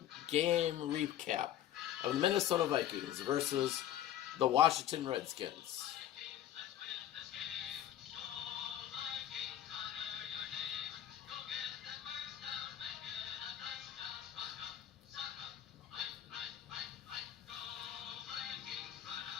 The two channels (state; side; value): quieter; right; 11.6 dB